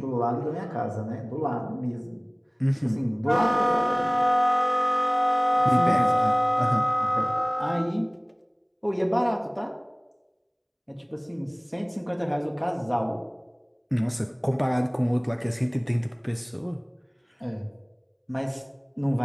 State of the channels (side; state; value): both; identical; correlation 1.00